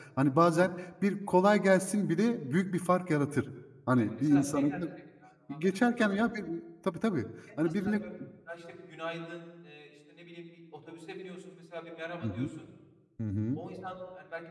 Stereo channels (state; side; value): identical; both; correlation 1.00